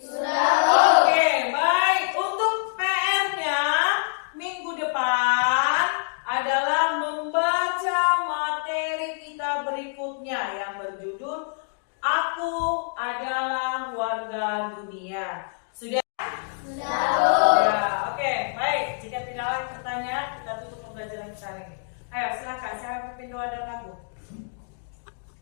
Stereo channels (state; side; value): silent; right; digital silence